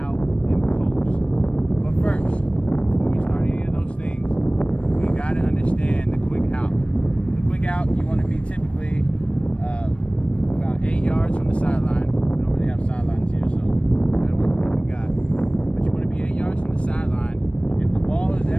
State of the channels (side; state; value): right; late; 0.060 ms